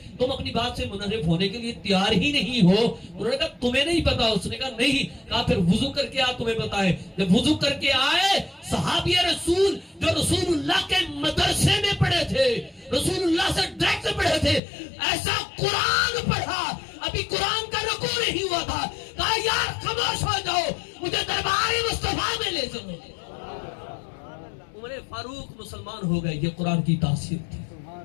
تم اپنی بات سے منحرف ہونے کے لیے تیار ہی نہیں ہو؟ انہوں نے کہا تمہیں نہیں پتا؟ اس نے کہا نہیں۔ کہا پھر وضو کر کے آ، تمہیں پتا ہے۔ جب وضو کر کے آئے، صحابی رسول جو رسول اللہ کے مدرسے میں پڑھے تھے، رسول اللہ سے ڈائریکٹ پڑھے تھے، ایسا قرآن پڑھا، ابھی قرآن کا رکوع نہیں ہوا تھا۔ کہا یار خاموش ہو جاؤ، مجھے دربار مصطفیٰ میں لے چلو۔ عمر فاروق مسلمان ہو گئے، یہ قرآن کی تاثیر تھی،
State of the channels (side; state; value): right; drops out; at 14.6 s